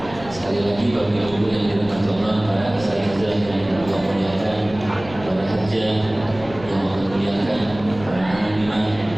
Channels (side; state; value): left; noise; rumble, 16 dB below the sound